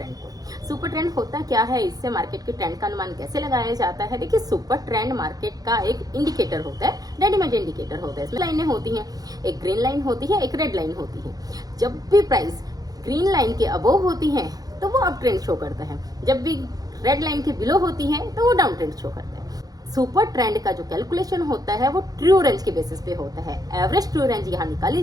को। सुपर ट्रेंड होता क्या है, इससे मार्केट के ट्रेंड का अनुमान कैसे लगाया जाता है। देखिए, सुपर ट्रेंड मार्केट का एक इंडिकेटर होता है, रेडीमेड इंडिकेटर होता है। इसमें लाइनें होती हैं, एक ग्रीन लाइन होती है, एक रेड लाइन होती है। जब भी प्राइस ग्रीन लाइन के अबोव होती है तो वो अप ट्रेंड शो करता है, जब भी रेड लाइन के बिलो होती है तो वो डाउन ट्रेंड शो करता है। सुपर ट्रेंड का जो कैलकुलेशन होता है वो ट्रू रेंज के बेसिस पे होता है। एवरेज ट्रू रेंज यहाँ निकाली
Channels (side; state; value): left; late; 0.18 ms